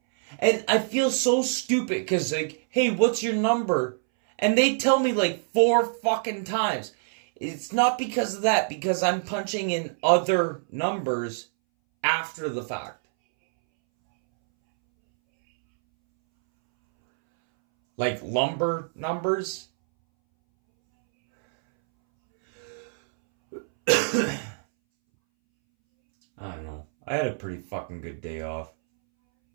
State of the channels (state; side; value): silent; left; 61 dB below the other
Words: And I feel so stupid because, like, hey, what's your number? And they tell me, like, 4 fucking times. It's not because of that, because I'm punching in other numbers after the fact. Like lumber numbers. I don't know. I had a pretty fucking good day off.